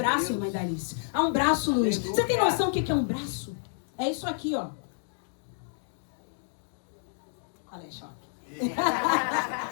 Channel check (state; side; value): silent; right; digital silence